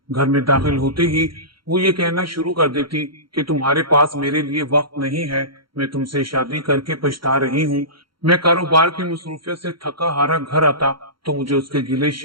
घर में दाखिल होते ही वो ये कहना शुरू कर देती कि तुम्हारे पास मेरे लिए वक्त नहीं है, मैं तुमसे शादी करके पछता रही हूँ। मैं कारोबार की मसरूफियत से थका हारा घर आता तो मुझे उसके गिले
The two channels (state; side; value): late; left; 0.73 ms